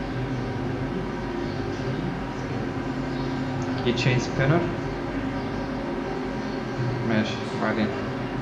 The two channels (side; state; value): both; identical; correlation 1.00